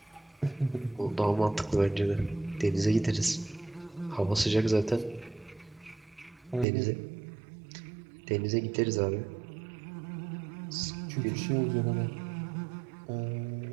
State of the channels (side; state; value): left; drops out; at 6.7 s